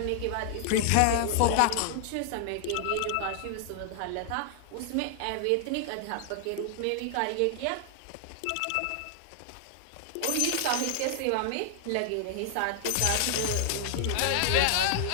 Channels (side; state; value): both; different; correlation 0.00